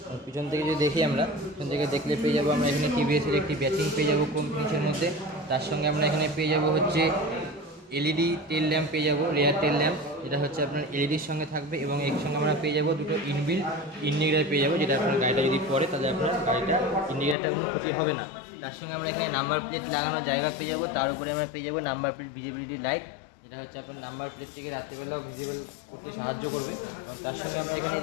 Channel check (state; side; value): drops out; right; at 17.4 s